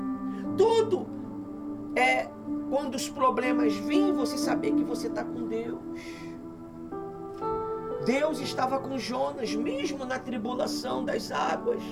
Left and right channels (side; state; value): both; identical; correlation 1.00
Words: Tudo é quando os problemas vêm, você saber que você está com Deus. Deus estava com Jonas, mesmo na tribulação das águas.